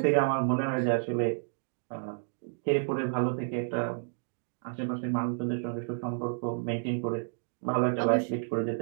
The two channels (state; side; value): silent; left; digital silence